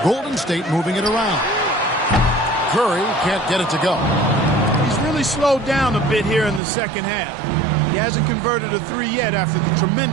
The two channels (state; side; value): drops out; left; at 6.6 s